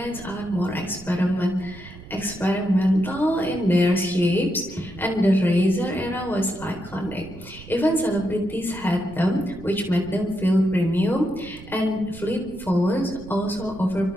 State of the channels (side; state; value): right; noise; rumble, 17 dB below the sound